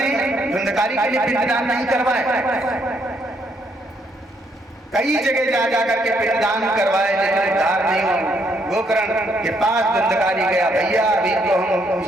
धुंधकारी के लिए पिंडदान नहीं करवाए? कई जगह जा जाकर के पिंडदान करवाए लेकिन उद्धार नहीं हुआ। गोकर्ण के पास धुंधकारी गया, भैया अभी तो हम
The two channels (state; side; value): normal; both; correlation 0.72